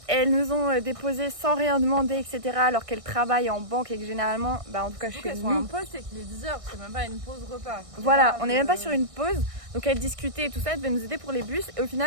elles nous ont déposés sans rien demander, etc. Alors qu'elles travaillent en banque et que généralement, en tout cas Surtout chez qu'elles sont en nous. pause, c'est qu'il est 10h, c'est même pas une pause repas. Voilà, on n'est même pas sur une pause. Donc elles discutaient et tout ça, elles devaient nous aider pour les bus. Et au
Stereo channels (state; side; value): late; left; 1.6 ms